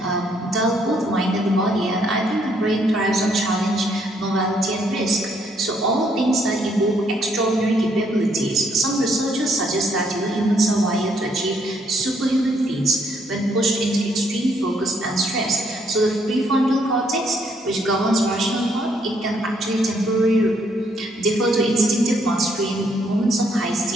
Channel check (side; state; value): both; normal; correlation 0.70